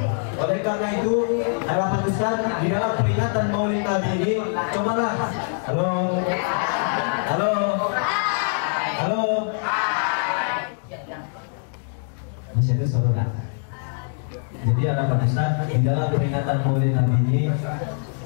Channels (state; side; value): silent; right; 63 dB below the other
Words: Oleh karena itu, harapan Ustaz di dalam peringatan Maulid Nabi ini, cobalah. Halo. Masih ada suara. Jadi harapan Ustaz di dalam peringatan Maulid Nabi ini,